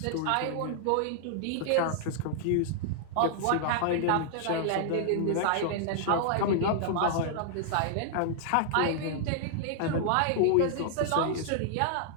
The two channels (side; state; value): both; different; correlation -0.01